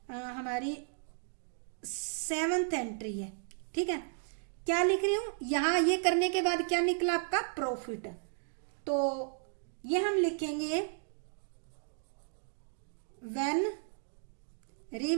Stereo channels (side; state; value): left; silent; digital silence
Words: हमारी 7th एंट्री है, ठीक है। क्या लिख रही हूँ, यहाँ ये करने के बाद क्या निकला आपका, प्रॉफिट। तो ये हम लिखेंगे व्हेन